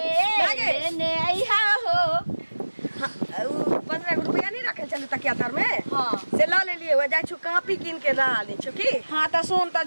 लेने आई हो। 15 रुपया नहीं रखे चले तकिया तर में हाँ से ला ले लिए हो जाय छु कॉपी किन के ला ले छु की। हाँ तो सुन तो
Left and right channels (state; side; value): inverted; both; correlation -1.00